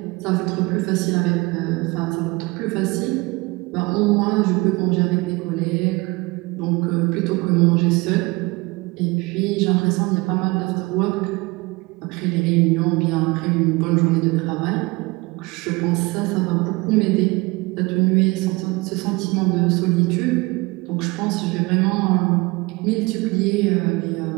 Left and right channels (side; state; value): left; quieter; 24.2 dB